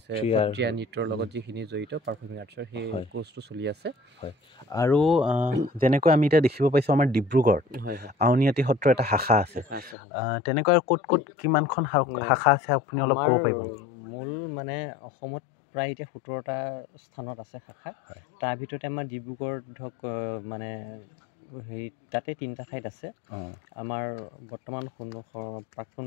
সত্ৰীয়া নৃত্যৰ লগত যিখিনি জড়িত পাৰফৰ্মিং আৰ্টছৰ সেই কোৰ্চটো চলি আছে। আৰু যেনেকৈ আমি এতিয়া দেখিব পাইছোঁ আমাৰ ডিব্ৰুগড়ত আউনীআটী সত্ৰৰ এটা শাখা আছে, তেনেকৈ ক'ত কিমানখন শাখা আছে আপুনি অলপ ক'ব পাৰিব? মূল মানে অসমত প্ৰায় এতিয়া 17টা স্থানত আছে শাখা। তাৰ ভিতৰতে আমাৰ ডিব্ৰুগড় ধৰক মানে হেৰি তাতে 3টা ঠাইত আছে। আমাৰ বৰ্তমান প্ৰাক্তন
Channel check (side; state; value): right; drops out; at 10.0 s